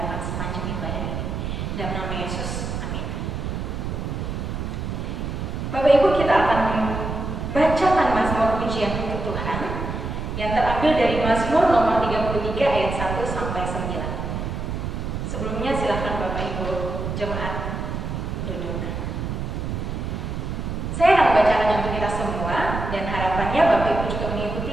sepanjang ibadah ini. Dalam nama Yesus, amin. Bapak Ibu, kita akan bacakan Mazmur pujian untuk Tuhan yang terambil dari Mazmur nomor 33 ayat 1 sampai 9. Sebelumnya silakan Bapak Ibu jemaat duduk. Saya akan membacakannya untuk kita semua dan harapannya Bapak Ibu juga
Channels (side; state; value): right; noise; rumble, 4 dB below the sound